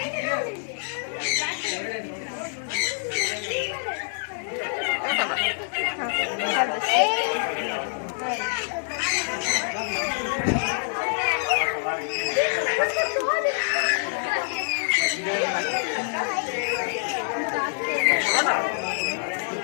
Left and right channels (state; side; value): silent; right; digital silence